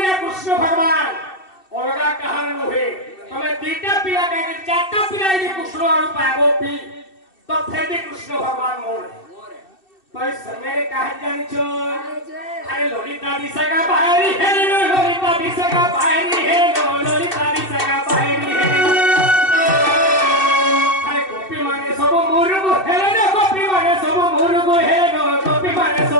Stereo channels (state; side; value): late; right; 2.6 ms